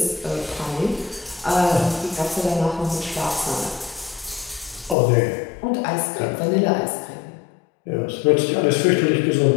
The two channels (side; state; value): right; drops out; at 5.0 s